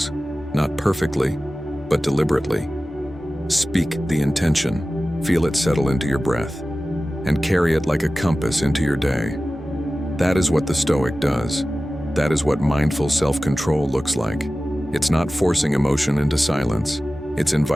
not perfectly, but deliberately. Speak the intention, feel it settle into your breath, and carry it like a compass into your day. That is what the Stoic does. That is what mindful self-control looks like. It's not forcing emotion into silence. It's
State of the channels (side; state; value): both; normal; correlation 0.96